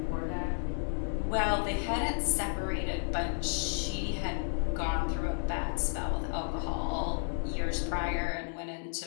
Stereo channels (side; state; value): right; silent; digital silence